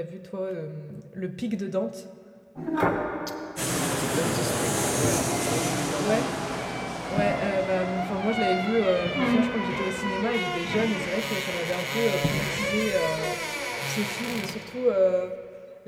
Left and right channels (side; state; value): both; identical; correlation 1.00